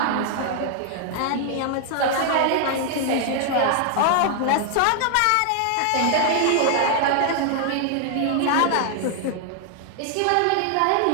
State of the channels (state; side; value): different; both; correlation 0.00